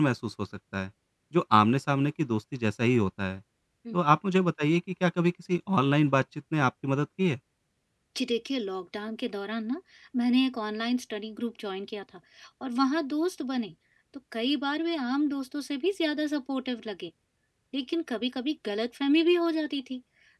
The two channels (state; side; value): identical; both; correlation 1.00